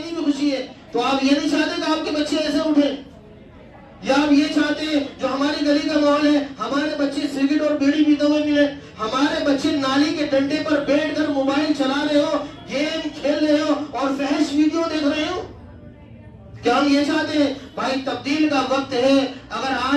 بھی خوشی ہے۔ تو آپ یہ نہیں چاہتے کہ آپ کے بچے ایسے اٹھیں، یا آپ یہ چاہتے ہیں جو ہماری گلی کا ماحول ہے، ہمارے بچے سگریٹ اور بیڑی پیتے ہوئے ملے، ہمارے بچے نالی کے ڈنڈے پر بیٹھ کر موبائل چلا رہے ہو، گیم کھیل رہے ہو اور فحش ویڈیو دیکھ رہے ہو؟ کیا ہم یہ چاہتے ہیں؟ بھائی تبدیل کا وقت ہے۔ اگر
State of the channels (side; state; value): both; identical; correlation 1.00